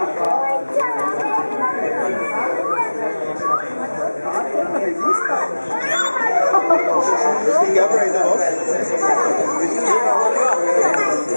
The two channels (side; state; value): both; inverted; correlation -1.00